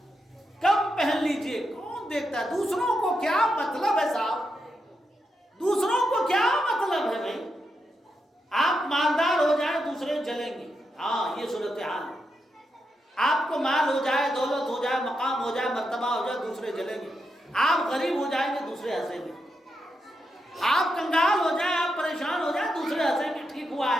کم پہن لیجئے، کون دیکھتا ہے؟ دوسروں کو کیا مطلب ہے صاحب؟ دوسروں کو کیا مطلب ہے بھائی؟ آپ مالدار ہو جائیں دوسرے جلیں گے. ہاں، یہ صورتحال ہے. آپ کو مال ہو جائے، دولت ہو جائے، مقام ہو جائے، مرتبہ ہو جائے، دوسرے جلیں گے. آپ غریب ہو جائیں گے، دوسرے ہنسیں گے. آپ کنگال ہو جائیں، آپ پریشان ہو جائیں، دوسرے ہنسیں گے ٹھیک ہوا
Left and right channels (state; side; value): normal; both; correlation 0.85